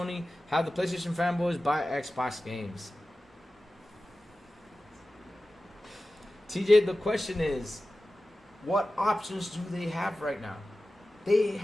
Have the PlayStation fanboys buy Xbox games. TJ, the question is, what options do they have right now? They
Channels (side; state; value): both; normal; correlation 0.95